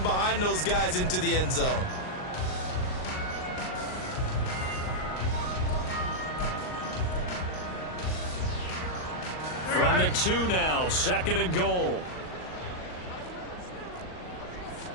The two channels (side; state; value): right; late; 39 ms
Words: behind those guys into the end zone. From the 2 now, second and goal.